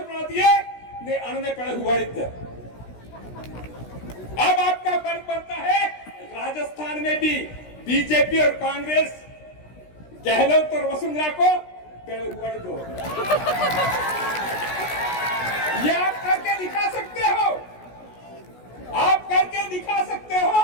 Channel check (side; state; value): right; late; 16 ms